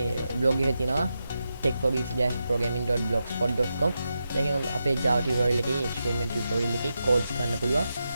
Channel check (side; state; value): both; inverted; correlation -0.88